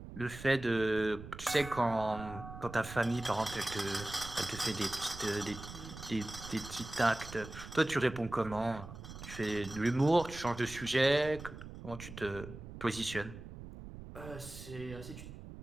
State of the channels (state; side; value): noise; right; rumble, 12 dB below the sound